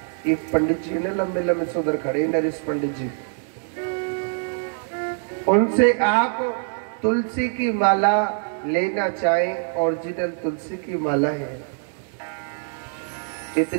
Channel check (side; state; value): left; silent; digital silence